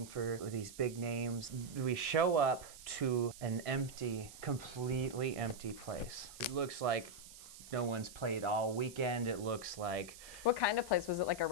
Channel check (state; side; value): noise; right; hiss, 16 dB below the sound